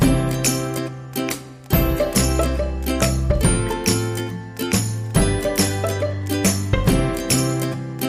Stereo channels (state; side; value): identical; both; correlation 1.00